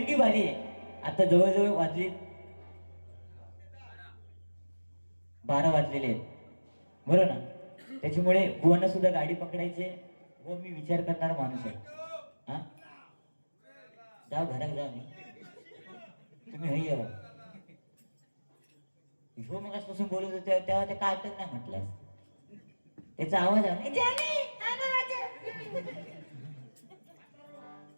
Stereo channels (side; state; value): both; inverted; correlation -1.00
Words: बारी आहे. आता जवळजवळ वाजले 12 वाजलेले आहेत, बरोबर ना? त्याच्यामुळे बुवांना सुद्धा गाडी पकडायचे व मी विचार करणारा माणूस आहे. हा, जाऊ घरात जाऊ. मी तुम्ही हई यावं. ह्यो मग आजपासून बोलत होते तेव्हा ते काय नाही म्हटलं. त्याचा आवाज आहे